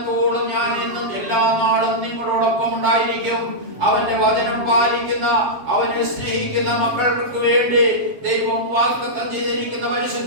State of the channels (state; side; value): late; left; 7.4 ms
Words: ഞാൻ എന്നും എല്ലാ നാളും നിങ്ങളോടൊപ്പം ഉണ്ടായിരിക്കും. അവന്റെ വചനം പാലിക്കുന്ന, അവനെ സ്നേഹിക്കുന്ന മക്കൾക്ക് വേണ്ടി ദൈവം വാഗ്ദത്തം ചെയ്തിരിക്കുന്ന